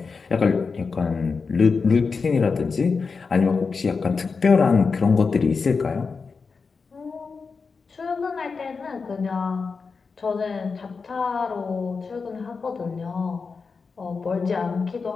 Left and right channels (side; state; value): right; quieter; 4.9 dB